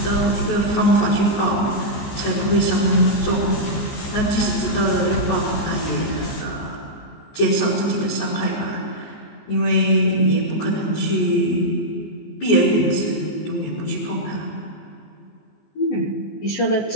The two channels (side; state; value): right; late; 15 ms